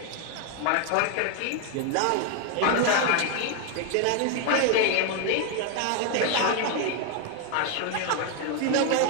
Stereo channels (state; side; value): different; both; correlation 0.00